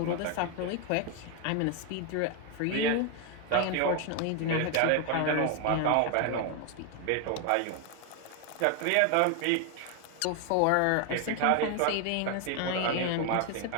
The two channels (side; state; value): both; different; correlation 0.01